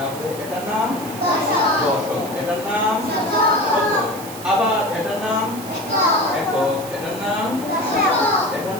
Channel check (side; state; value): right; noise; hiss, 14 dB below the sound